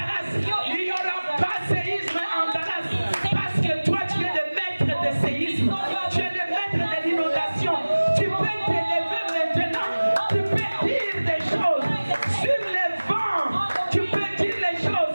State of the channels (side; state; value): both; inverted; correlation -1.00